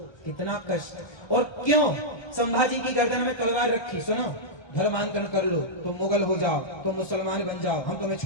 कितना कष्ट। और क्यों संभाजी की गर्दन में तलवार रखी? सुनो, धर्मांतरण कर लो तो मुगल हो जाओ, तो मुसलमान बन जाओ, हम तुम्हें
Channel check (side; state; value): right; late; 1.3 ms